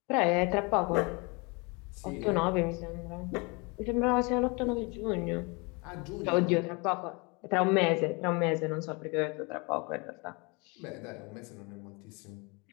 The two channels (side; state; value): right; quieter; 29.2 dB